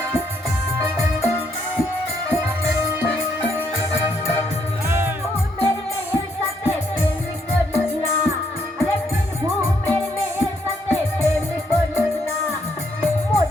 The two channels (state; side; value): normal; both; correlation 0.73